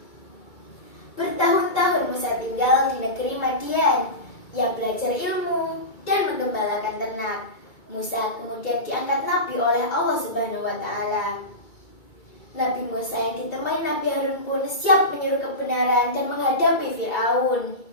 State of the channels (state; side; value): late; right; 2.2 ms